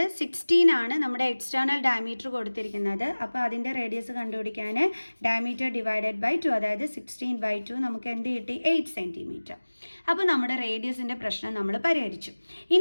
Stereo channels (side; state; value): both; inverted; correlation -1.00